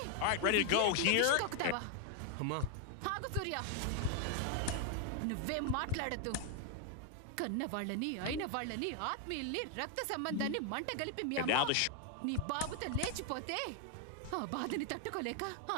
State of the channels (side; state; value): both; different; correlation 0.00